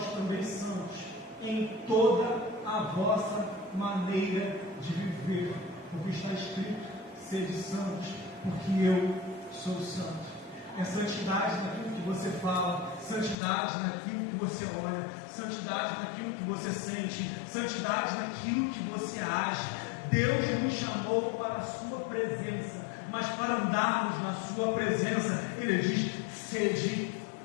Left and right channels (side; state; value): right; drops out; at 13.4 s